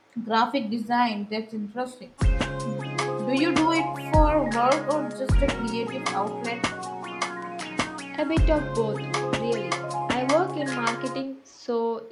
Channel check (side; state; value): both; identical; correlation 1.00